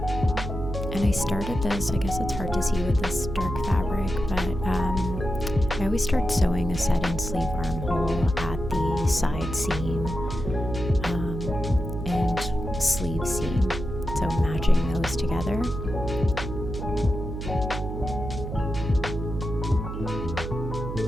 And I started this, I guess it's hard to see with this dark fabric, but I always start sewing a set-in sleeve armhole at the side seam and sleeve seam, so matching those together.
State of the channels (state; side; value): noise; right; hum, 6 dB below the sound